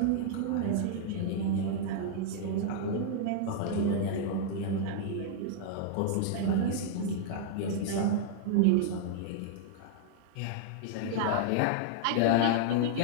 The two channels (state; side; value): different; both; correlation -0.01